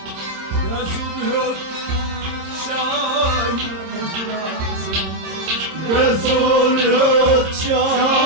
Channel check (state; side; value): late; left; 26 ms